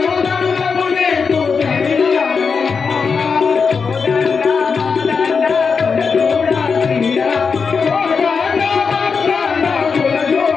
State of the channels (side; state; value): right; quieter; 5.4 dB